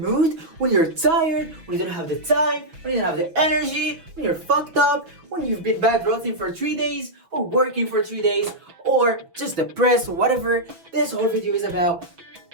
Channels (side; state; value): left; late; 5.9 ms